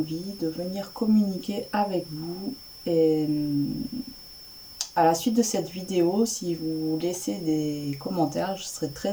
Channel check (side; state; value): both; identical; correlation 1.00